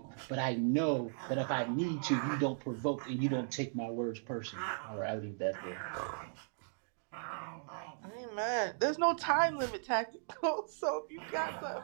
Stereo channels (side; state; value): left; silent; digital silence